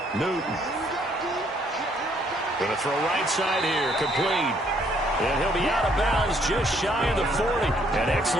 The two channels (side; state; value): both; normal; correlation 0.67